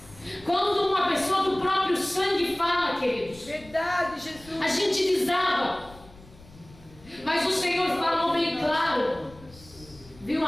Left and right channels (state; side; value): noise; left; rumble, 23 dB below the sound